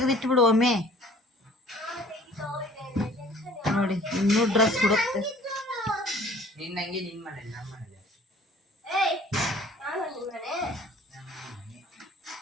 ಬಿಡು ಒಮ್ಮೆ ನೋಡಿ. ಇನ್ನೂ ಡ್ರೆಸ್ ಹುಡುಕ್ತೆ. ನಿನ್ನಂಗೆ ನಿನ್ ಮನೆ ನಮ್ಮ ಮನೆ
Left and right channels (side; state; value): both; normal; correlation 0.52